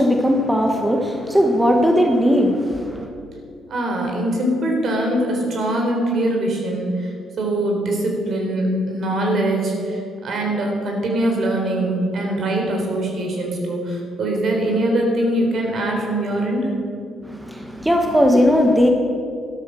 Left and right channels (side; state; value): both; normal; correlation 0.76